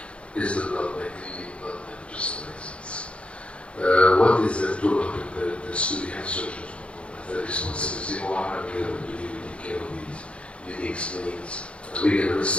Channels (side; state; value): right; late; 0.060 ms